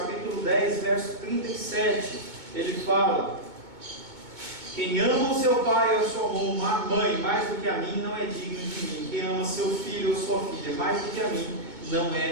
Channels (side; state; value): left; late; 2.2 ms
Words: 10, verso 37, ele fala: quem ama o seu pai ou a sua mãe mais do que a mim não é digno de mim. Quem ama seu filho ou sua filha mais do que a mim não